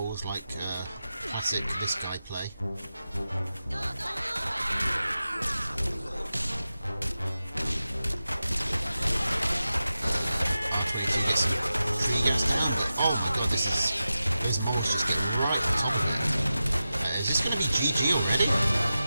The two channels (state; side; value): inverted; both; correlation -0.92